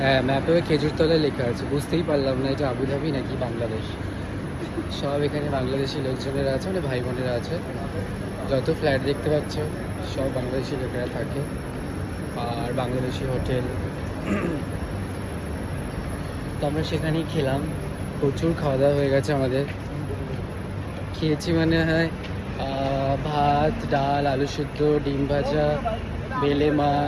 হ্যাঁ, ম্যাপেও খেজুরতলায় লেখা আছে, বুঝতেই পারলাম না এটা আবুধাবি নাকি বাংলাদেশ। সব এখানে বাংলাদেশি লোকজনেরা আছে, মানে ভাই বোনেরা আছে। যত ফ্ল্যাট দেখতে পাচ্ছ সব বাংলাদেশি লোকেরা থাকে, আর বাংলাদেশি হোটেল। তো আমরা সেখানেই খেলাম, প্রচুর খাওয়া দাওয়া হয়ে গেছে আমাদের। খেয়েছি মানে হয় ভাত, ডাল, আলু সিদ্ধ, ডিম ভাজা, বেলে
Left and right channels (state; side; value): identical; both; correlation 1.00